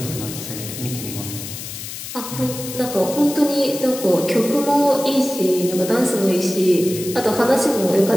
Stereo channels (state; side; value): noise; left; hiss, 9 dB below the sound